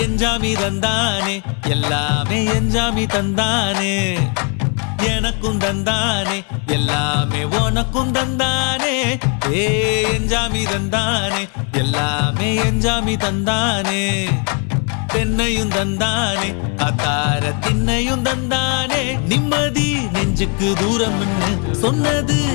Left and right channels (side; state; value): right; quieter; 38.2 dB